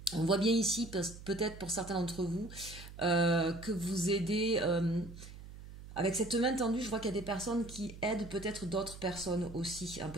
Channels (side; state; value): right; noise; hum, 15 dB below the sound